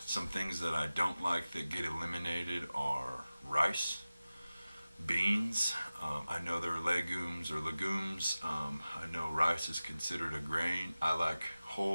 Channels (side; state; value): both; inverted; correlation -0.96